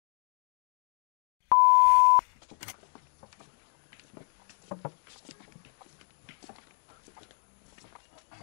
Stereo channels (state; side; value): silent; right; 58 dB below the other